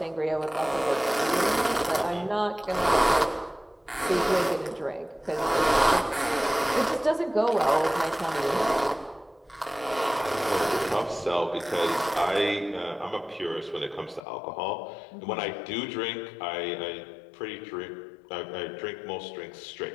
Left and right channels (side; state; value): right; drops out; at 14.2 s